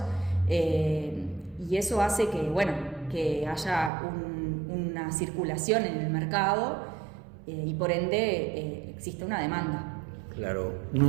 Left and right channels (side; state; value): left; drops out; at 3.9 s